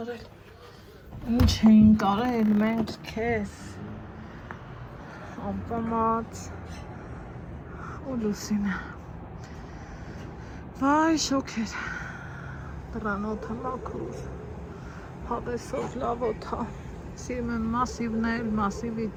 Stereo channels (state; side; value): identical; both; correlation 1.00